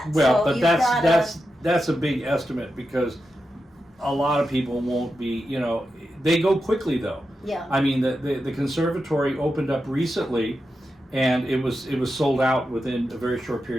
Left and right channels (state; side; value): normal; both; correlation 0.89